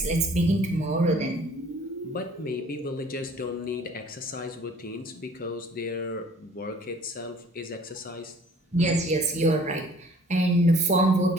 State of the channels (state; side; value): normal; both; correlation 0.53